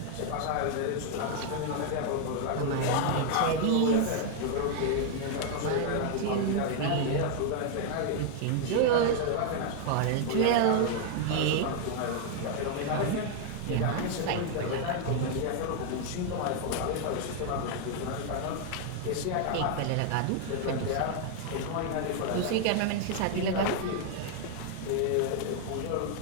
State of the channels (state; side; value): different; both; correlation 0.00